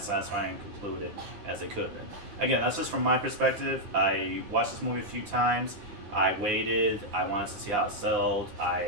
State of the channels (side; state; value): left; late; 9.8 ms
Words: satisfying and concluded as they could have been. Again, that's just from my perspective. I watched this movie a few times. I waited. I wanted to see how it sold.